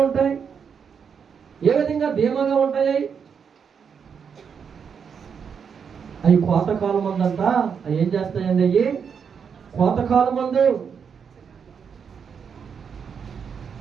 ఉంటాయి, ఏ విధంగా ధీమాగా ఉంటాయి. అవి కోతకాలం మందంట అవి ఏం చేస్తాయండి? అవి కోతకాలం మందు,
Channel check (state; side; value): quieter; left; 6.7 dB